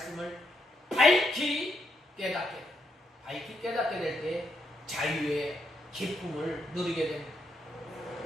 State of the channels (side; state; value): both; normal; correlation 0.78